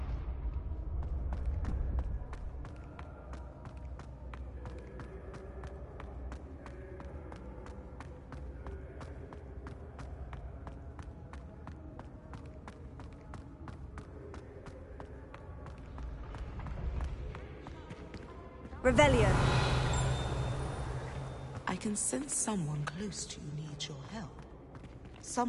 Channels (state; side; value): identical; both; correlation 1.00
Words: Revelio. I can sense someone close to you needs your help.